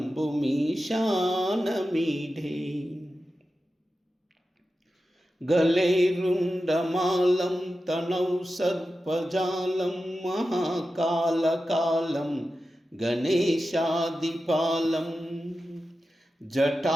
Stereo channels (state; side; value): normal; both; correlation 0.92